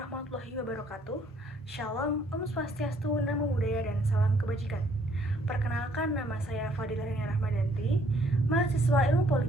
wabarakatuh. Shalom, Om Swastiastu, Namo Buddhaya, dan salam kebajikan. Perkenalkan, nama saya Fadila Rania Rahmadanti, mahasiswa Ilmu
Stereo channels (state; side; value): normal; both; correlation 0.64